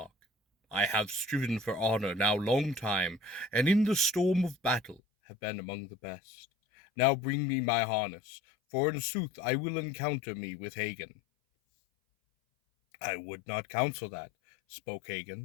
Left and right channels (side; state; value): right; drops out; at 5.0 s